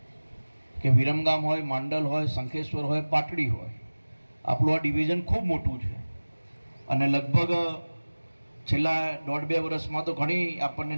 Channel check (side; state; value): both; inverted; correlation -1.00